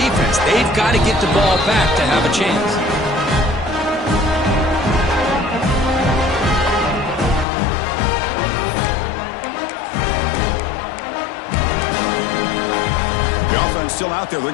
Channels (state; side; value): drops out; right; at 7.5 s